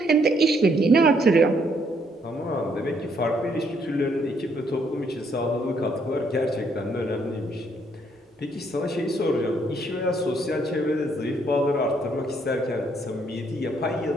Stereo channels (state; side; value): normal; both; correlation 0.70